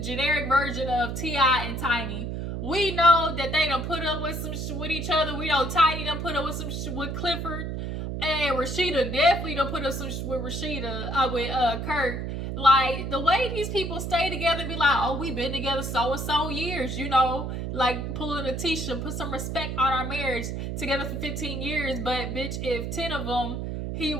generic version of T.I. and Tiny. We know that they done put up with some with each other. We know Tiny done put up with some with Clifford. And Rashida definitely done put up some with with Kurt. Like, the way these people stay together and be like, oh, we been together so and so years, like pulling a Tisha, put some respect on our marriage, together for 15 years. But bitch, if 10 of them he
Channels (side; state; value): right; noise; hum, 4 dB below the sound